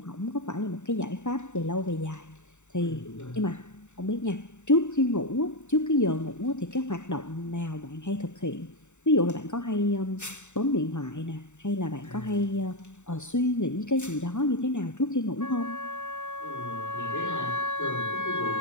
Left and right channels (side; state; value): right; late; 0.84 ms